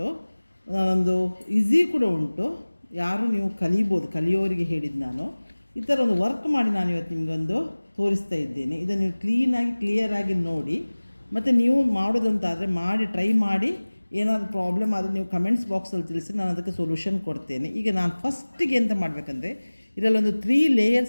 ಒಂದು ಈಸಿ ಕೂಡ ಉಂಟು. ಯಾರು ನೀವು ಕಲಿಬೋದು, ಕಲಿಯೋರಿಗೆ ಹೇಳಿದ್ದು ನಾನು. ಈ ಥರ ಒಂದು ವರ್ಕ್ ಮಾಡಿ ನಾನು ಇವತ್ತು ನಿಮಗೊಂದು ತೋರಿಸ್ತಾ ಇದ್ದೇನೆ. ಇದನ್ನು ನೀವು ಕ್ಲಿಯರಾಗಿ ನೋಡಿ, ಮತ್ತು ನೀವು ಮಾಡೋದಂತಾದರೆ ಮಾಡಿ ಟ್ರೈ ಮಾಡಿ. ಏನಾದರೂ ಪ್ರಾಬ್ಲಮ್ ಆದರೆ ನೀವು ಕಮೆಂಟ್ಸ್ ಬಾಕ್ಸಲ್ಲಿ ತಿಳಿಸಿ, ನಾನು ಅದಕ್ಕೆ ಸೊಲ್ಯೂಷನ್ ಕೊಡ್ತೇನೆ. ಈಗ ನಾನು ಫಸ್ಟಿಗೆ ಎಂತ ಮಾಡಬೇಕಂದ್ರೆ, ಇದರಲ್ಲೊಂದು 3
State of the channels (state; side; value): inverted; both; correlation -1.00